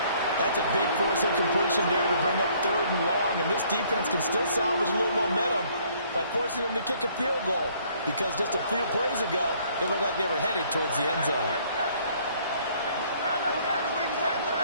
That's a big force incompletion there to bring up 3rd and long. And this defense can still salvage a little momentum by forcing them to kick a field goal. Because just a few plays ago, it looked like they were headed towards the end zone.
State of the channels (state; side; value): inverted; both; correlation -0.62